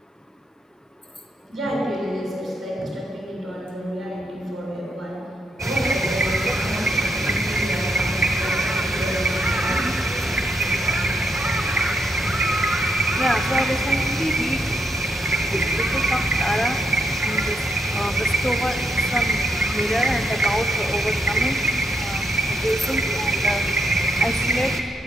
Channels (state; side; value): normal; both; correlation 0.78